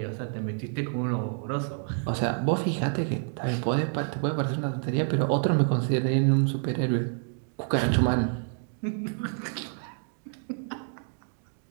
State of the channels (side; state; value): left; silent; 59 dB below the other